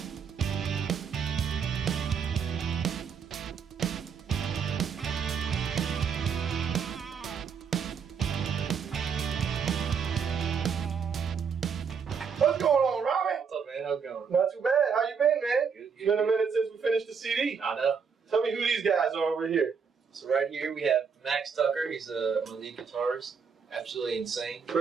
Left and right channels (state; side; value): quieter; left; 6.3 dB